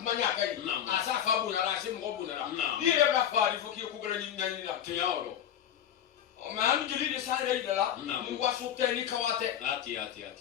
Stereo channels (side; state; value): right; quieter; 10.0 dB